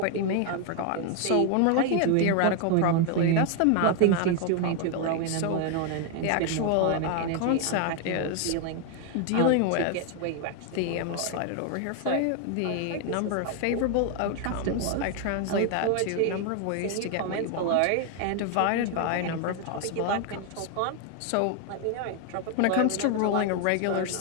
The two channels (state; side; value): different; both; correlation 0.00